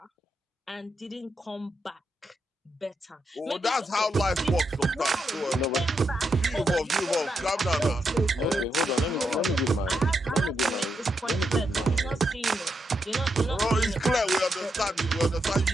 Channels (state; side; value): normal; both; correlation 0.83